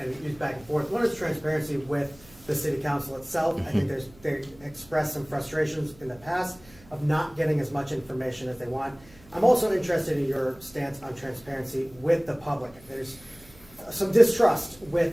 and used back and forth. One is transparency with the city council itself. I think they expressed some frustrations in the past of not getting as much information as they want. I'm also interested in your stance on transparency with the public. There's some distrust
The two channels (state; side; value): noise; right; hum, 25 dB below the sound